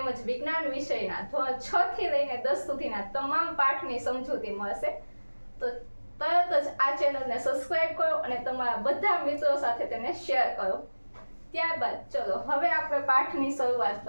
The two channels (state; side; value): inverted; both; correlation -1.00